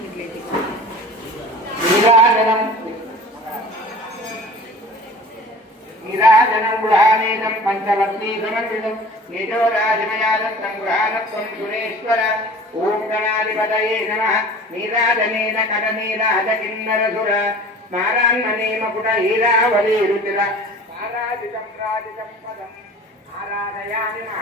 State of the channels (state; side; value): normal; both; correlation 0.42